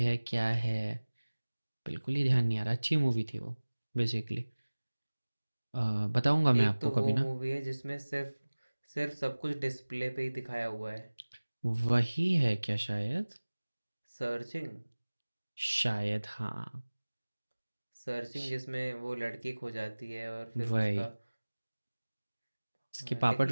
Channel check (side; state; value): both; inverted; correlation -1.00